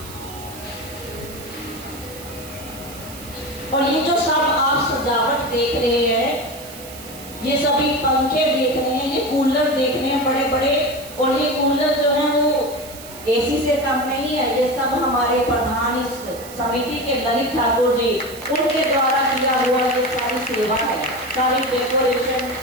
और ये जो सब आप सजावट देख रहे हैं, ये सभी पंखे देख रहे हैं, ये कूलर देख रहे हैं बड़े बड़े, और ये कूलर जो है वो एसी से कम नहीं है। ये सब हमारे प्रधान इस समिति के ललित ठाकुर जी, उनके द्वारा किया हुआ ये सारी सेवा है, सारी डेकोरेशन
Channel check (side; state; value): right; noise; hiss, 15 dB below the sound